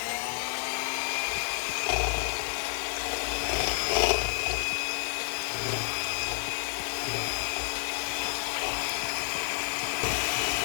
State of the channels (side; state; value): right; silent; digital silence